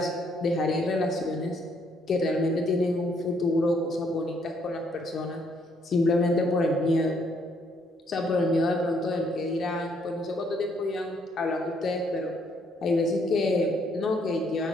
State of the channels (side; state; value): both; normal; correlation 0.69